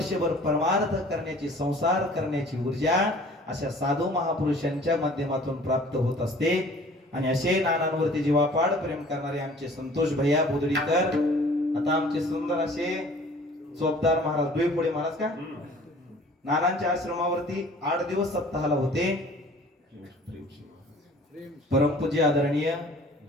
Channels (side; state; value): both; normal; correlation 0.50